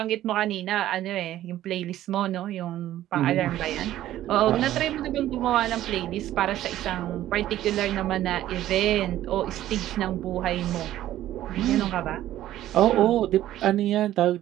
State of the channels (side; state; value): left; quieter; 13.4 dB